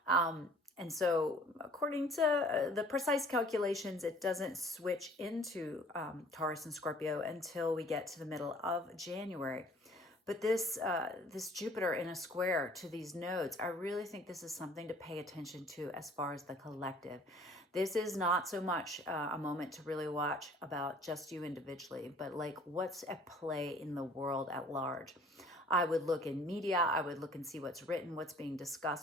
and so according to the precise calculations, it doesn't switch into Taurus and Scorpio until we get to the middle of January. But this Jupiter in a square to these nodes, I really think this is something to pay attention to as far as the collective. This is not so much a moment to really watch about just you individually, but like what's at play in the world at large. I would look in media, I would look and see what's written, what's being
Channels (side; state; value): both; normal; correlation 0.53